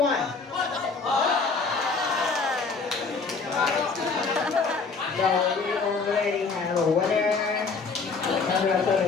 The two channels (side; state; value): right; quieter; 4.6 dB